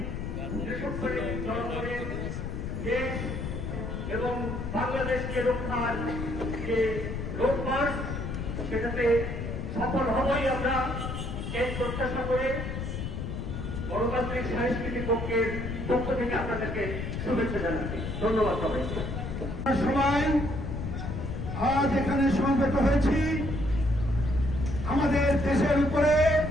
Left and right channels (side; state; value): left; noise; rumble, 5 dB below the sound